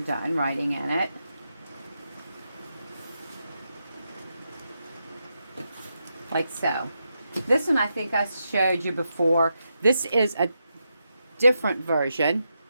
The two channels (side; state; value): both; inverted; correlation -0.85